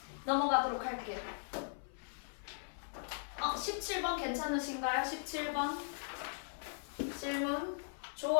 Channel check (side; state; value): right; silent; 52 dB below the other